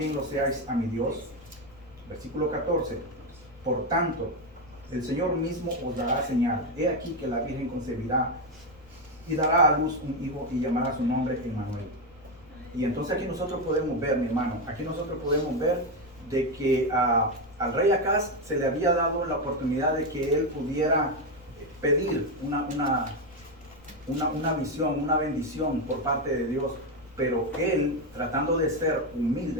lo seáis a mi Dios. Versículo 14, por tanto, el Señor mismo os dará señal, he aquí que la Virgen concebirá y dará a luz un hijo y llamará su nombre Emmanuel. Y entonces aquí nosotros podemos ver, mi hermano, aquí nosotros podemos ver de que al rey Acaz se le había dado la oportunidad de que él pudiera pedir una visión, una bendición por parte de Dios, pero él, tratando de ser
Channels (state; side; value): noise; left; rumble, 25 dB below the sound